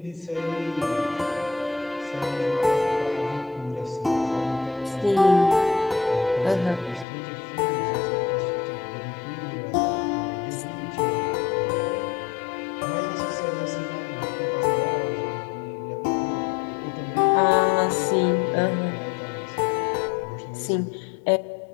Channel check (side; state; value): right; drops out; at 7.1 s